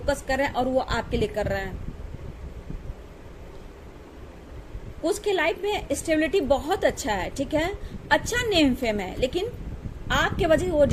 कर रहे हैं और वो आपके लिए कर रहे हैं। कुछ के लाइफ में स्टेबिलिटी बहुत अच्छा है, ठीक है, अच्छा नेम फेम है, लेकिन आपके वजह से वो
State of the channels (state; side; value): identical; both; correlation 1.00